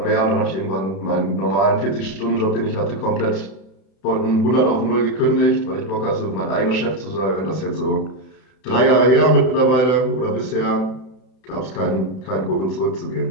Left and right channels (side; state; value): right; late; 32 ms